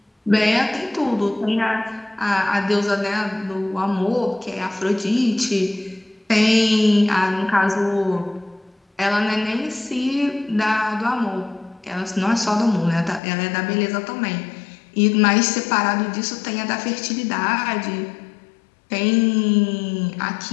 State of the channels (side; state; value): right; drops out; at 13.2 s